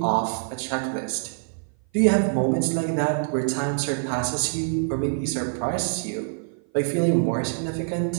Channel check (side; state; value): left; silent; 56 dB below the other